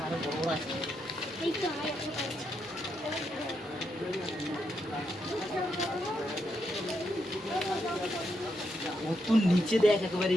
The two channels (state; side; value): normal; both; correlation 0.81